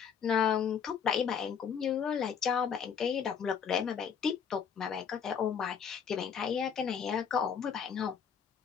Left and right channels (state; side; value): quieter; right; 7.2 dB